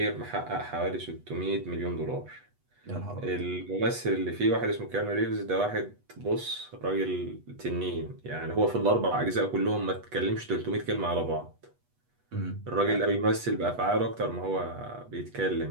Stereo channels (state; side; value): late; left; 8.2 ms